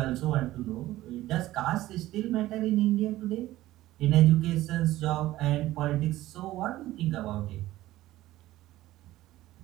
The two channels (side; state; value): left; quieter; 15.9 dB